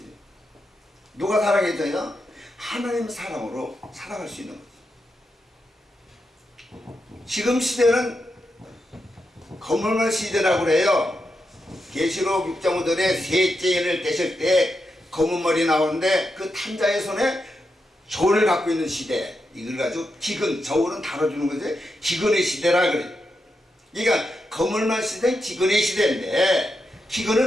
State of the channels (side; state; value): both; normal; correlation 0.86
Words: 누가 사랑해줘요? 하나님 사랑으로 살아갈 수 있는 거지. 지금 시대는 거물만 시대라고 그래요. 계시록 6장 5절에 셋째 인을 떼실 때 검은 머리 나오는데 그 탄자의 손에 저울을 갖고 있는 시대, 이걸 가지고 기근, 저울은 다뤄주는 거지 기근의 시대라 그래. 그러니까 거물만 시대는 기근의 시대인데